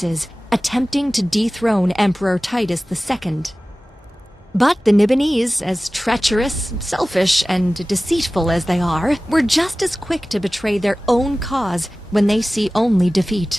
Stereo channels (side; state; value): both; normal; correlation 0.97